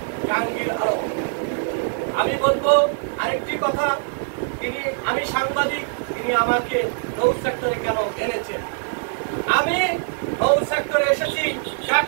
জাহাঙ্গীর আলম। আমি বলবো আরেকটি কথা, আমি সাংবাদিক, তিনি আমাকে নৌ সেক্টরে কেন এনেছেন? আমি নৌ সেক্টরে এসেছি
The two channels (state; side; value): silent; left; 63 dB below the other